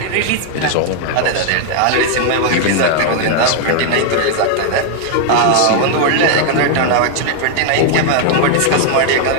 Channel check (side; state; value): both; different; correlation 0.00